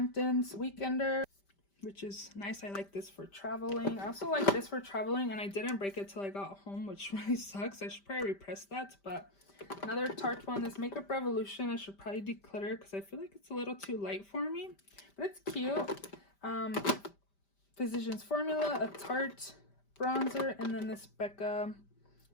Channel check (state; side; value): late; right; 5.1 ms